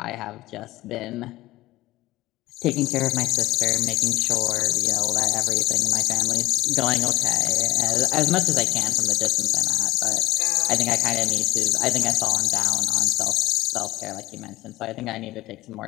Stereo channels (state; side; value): quieter; right; 17.1 dB